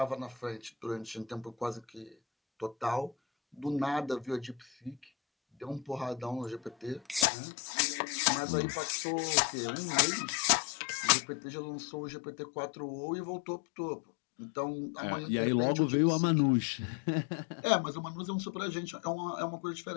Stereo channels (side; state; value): right; drops out; at 7.2 s